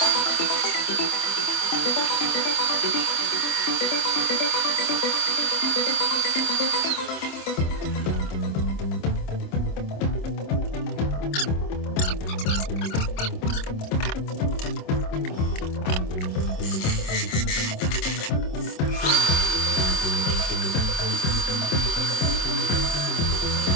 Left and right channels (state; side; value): late; right; 26 ms